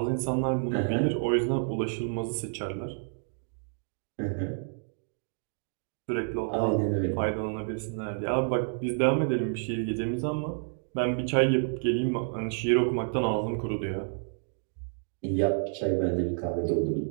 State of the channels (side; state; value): left; silent; digital silence